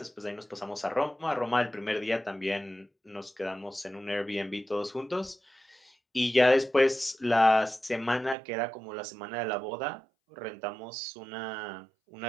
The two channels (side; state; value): left; drops out; at 8.3 s